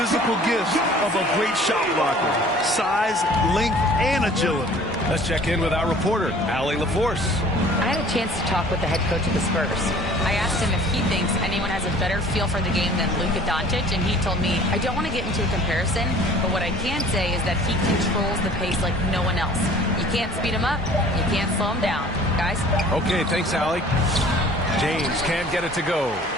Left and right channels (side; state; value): both; normal; correlation 0.49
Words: gifts of a great shot blocker. Size, length, and agility. Let's check in with our reporter, Allie LaForce. I had a chance to talk with the head coach of the Spurs. I asked him if he thinks anyone has a better feel for the game than Luka Doncic, and he told me, I don't want to get into a comparison, but what I can say is that he controls the pace like no one else. You can't speed him up, you can't slow him down. Guys? Okay, thanks, Allie. James can't get it to go.